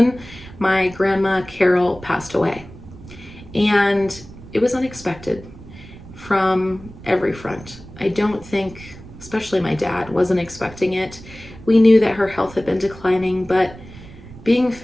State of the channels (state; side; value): noise; right; rumble, 17 dB below the sound